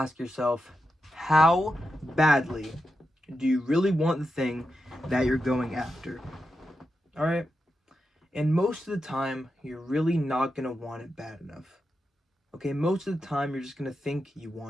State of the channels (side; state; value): both; normal; correlation 0.88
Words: yourself, how badly do you really want the thing that you're going after? All right? And most of the time, you're really not going to want it bad enough. Okay? Most of the time, you're just going to think you